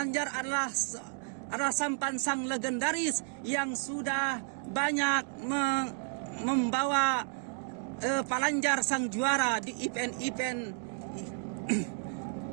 adalah sampan sang legendaris yang sudah banyak membawa Palanjar sang juara di event-event.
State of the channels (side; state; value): left; silent; 56 dB below the other